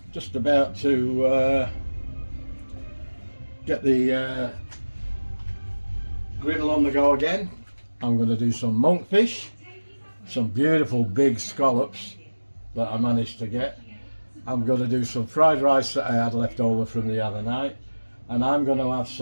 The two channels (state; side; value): inverted; both; correlation -1.00